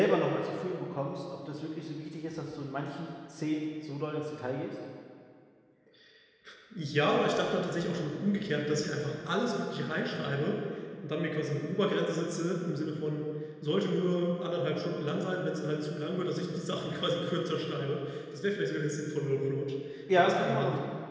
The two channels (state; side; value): identical; both; correlation 1.00